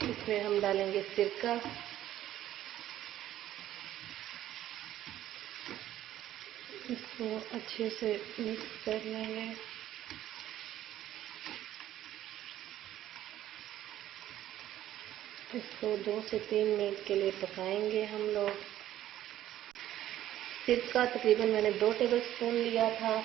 इसमें हम डालेंगे सिरका। इसको अच्छे से मिक्स कर लेंगे। इसको 2 से 3 मिनट के लिए पकाएंगे हम लोग। सिरका तकरीबन मैंने 2 टेबलस्पून लिया था।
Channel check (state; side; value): quieter; left; 12.8 dB